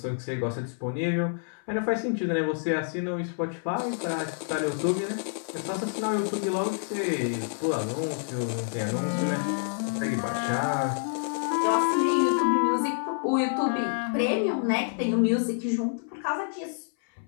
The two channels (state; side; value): silent; right; 59 dB below the other